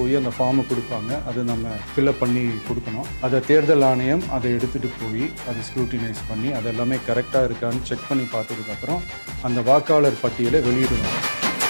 அந்த ஃபார்மை கொடுப்பாங்க. அதை நம்ம ஃபில்அப் பண்ணி கொடுக்கணும். அதை தேர்தல் ஆணையம் அதை எடுத்துகிட்டு போய் அதை ஸ்க்ரூட்டினைஸ் பண்ணி அதெல்லாமே கரெக்டாக இருக்கான்னு செக் பண்ணி பார்த்ததுக்கப்புறம் அந்த வாக்காளர் பட்டியலை வெளியிடுவாங்க.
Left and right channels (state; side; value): inverted; both; correlation -1.00